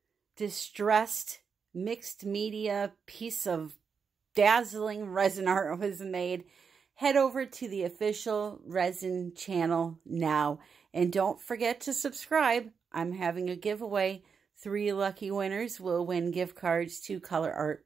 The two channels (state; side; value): quieter; left; 6.0 dB